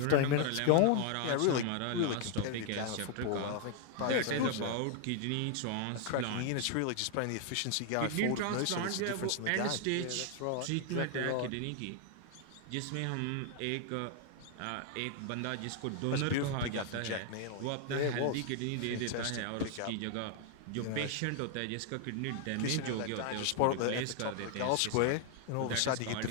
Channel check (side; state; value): both; different; correlation 0.00